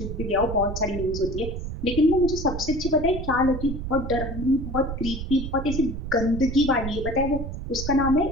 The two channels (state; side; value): noise; right; rumble, 6 dB below the sound